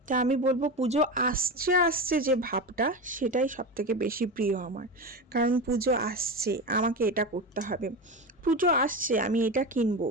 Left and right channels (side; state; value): both; normal; correlation 0.22